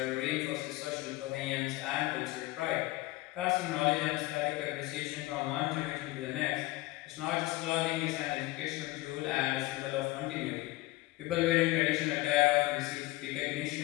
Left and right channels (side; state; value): right; quieter; 19.5 dB